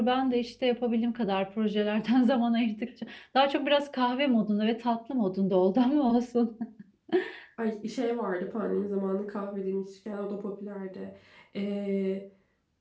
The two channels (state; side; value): identical; both; correlation 1.00